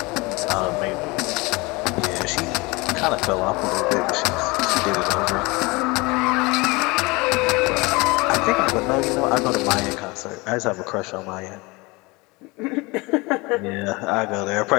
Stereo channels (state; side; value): quieter; right; 24.9 dB